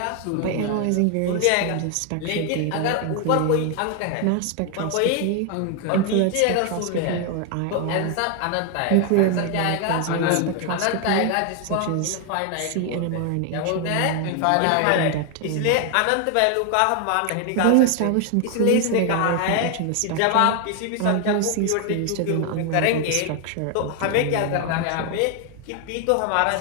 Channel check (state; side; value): different; both; correlation 0.01